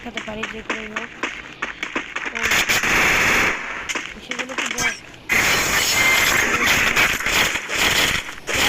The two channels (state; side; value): identical; both; correlation 1.00